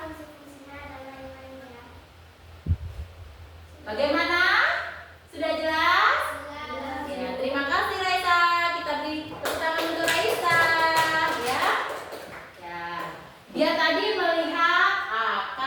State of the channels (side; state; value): both; identical; correlation 1.00